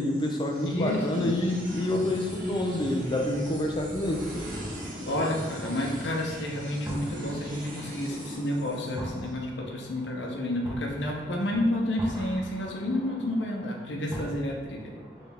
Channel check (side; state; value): both; normal; correlation 0.67